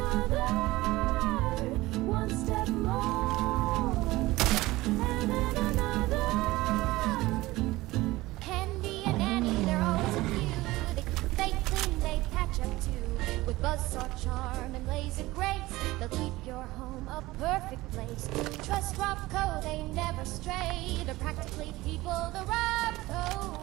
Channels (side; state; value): left; quieter; 19.0 dB